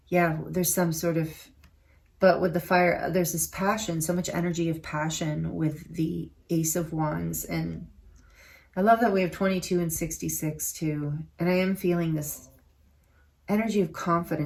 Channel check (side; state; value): both; identical; correlation 1.00